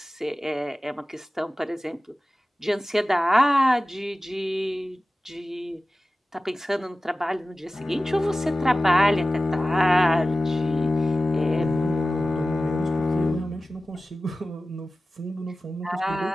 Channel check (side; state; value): both; normal; correlation 0.96